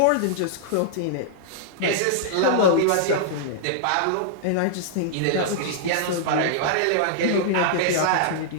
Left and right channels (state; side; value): different; both; correlation -0.01